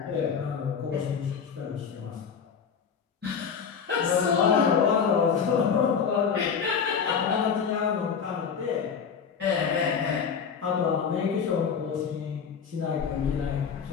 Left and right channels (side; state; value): right; quieter; 6.6 dB